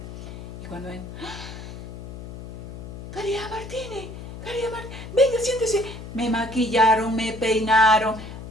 Y cuando ven, Caridad Martínez, venga, siéntese. Me maquillaron, me peinaron,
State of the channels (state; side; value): noise; left; hum, 11 dB below the sound